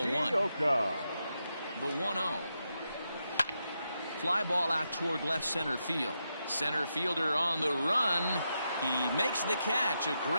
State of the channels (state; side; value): inverted; both; correlation -0.85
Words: 1. The 1-0. Fly ball out toward left center field. Center fielder on the run. He makes the catch. A